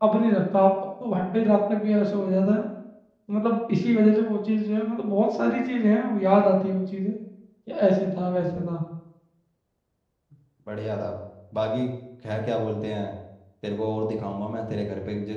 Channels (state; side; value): identical; both; correlation 1.00